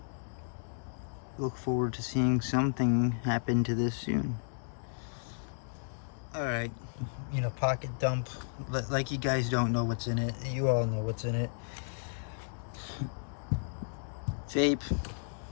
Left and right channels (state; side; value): silent; right; digital silence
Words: Look forward to seeing something happen to this soon. Alright, you know, pocket dump. Like you guys don't know what's in it. You all know what's in it. Vape.